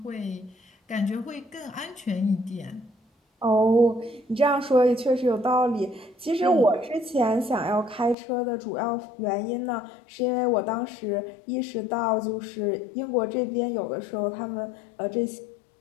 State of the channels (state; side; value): drops out; right; at 8.2 s